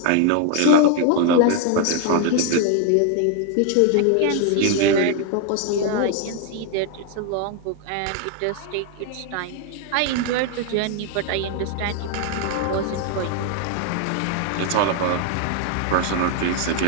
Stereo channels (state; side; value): different; both; correlation 0.00